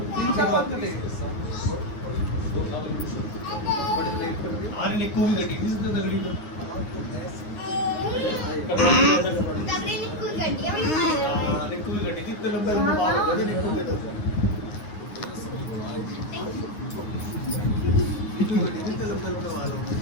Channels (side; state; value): right; late; 9.6 ms